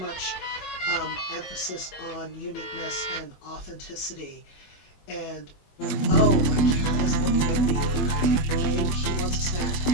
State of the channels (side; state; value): right; late; 21 ms